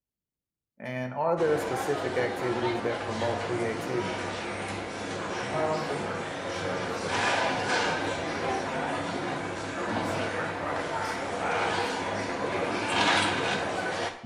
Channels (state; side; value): identical; both; correlation 1.00